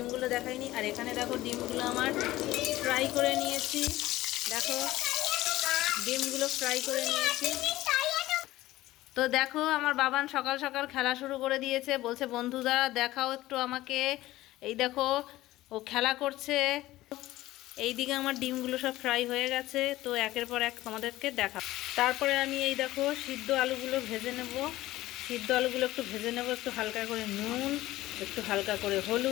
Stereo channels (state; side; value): quieter; right; 16.6 dB